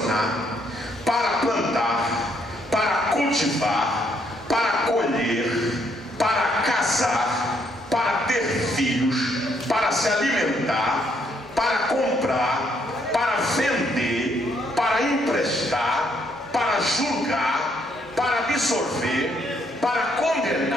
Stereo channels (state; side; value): normal; both; correlation 0.72